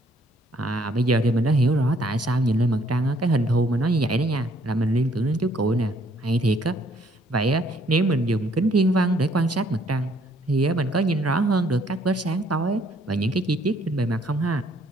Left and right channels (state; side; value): normal; both; correlation 0.65